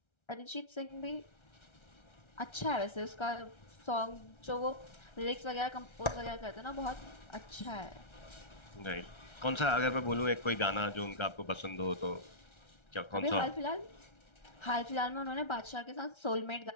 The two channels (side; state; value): right; late; 1.3 ms